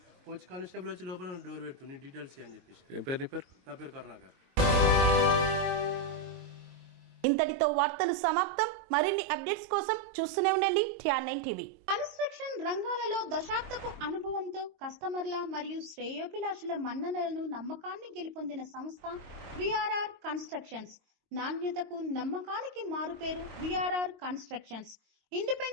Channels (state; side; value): late; left; 22 ms